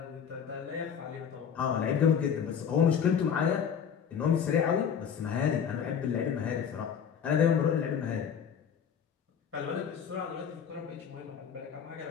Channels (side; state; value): right; quieter; 7.6 dB